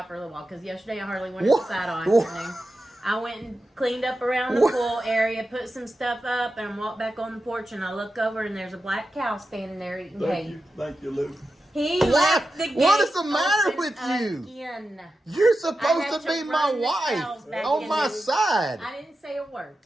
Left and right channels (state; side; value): normal; both; correlation 0.91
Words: for a little while because yesterday I hardly went What? outside all What? afternoon. I went and cleaned up around the What? pool area, put some stuff up, and I walked back on the porch and I look over and there's a black cow standing there eating hay. Thank you, Lou. He What? left the gate What is the matter open with you? Again. You're I supposed had to to be my run the cows wife back on in my the- side. I didn't say a word.